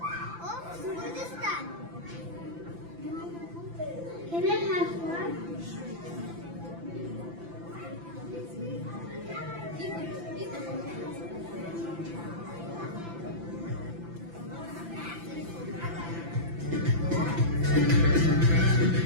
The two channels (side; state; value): left; late; 5.9 ms